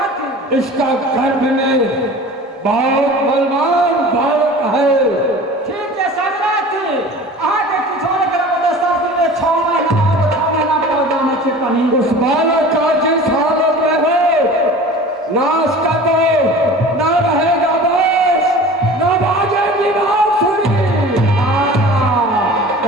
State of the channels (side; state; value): both; normal; correlation 0.40